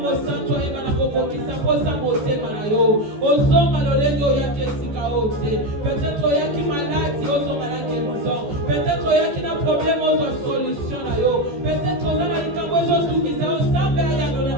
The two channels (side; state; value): left; late; 14 ms